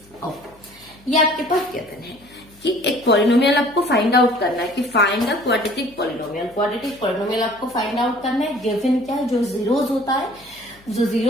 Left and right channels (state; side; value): noise; left; hum, 28 dB below the sound